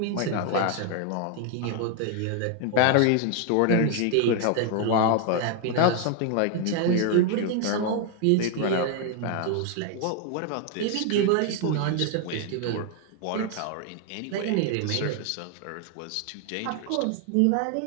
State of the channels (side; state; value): both; different; correlation 0.01